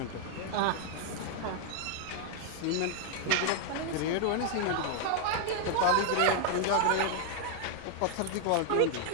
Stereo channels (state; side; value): different; both; correlation 0.00